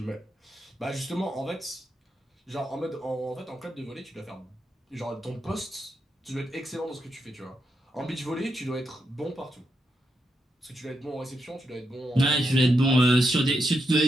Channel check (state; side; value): normal; both; correlation 0.84